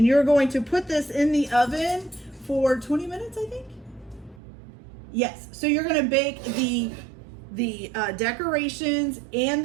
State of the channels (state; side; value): drops out; left; at 4.4 s